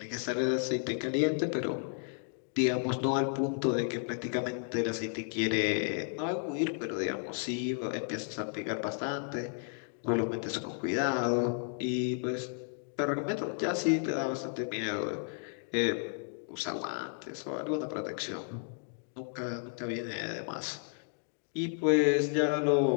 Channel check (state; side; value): silent; right; 56 dB below the other